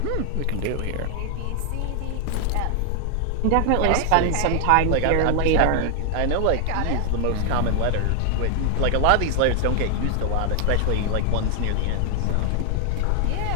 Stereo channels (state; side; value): different; both; correlation 0.00